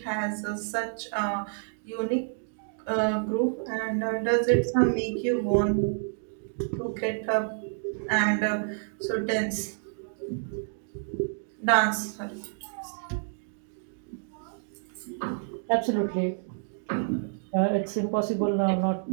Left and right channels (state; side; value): silent; left; digital silence